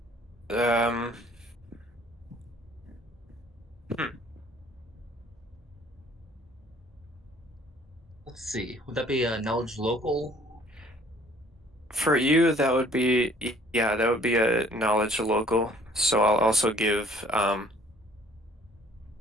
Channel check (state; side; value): normal; both; correlation 0.57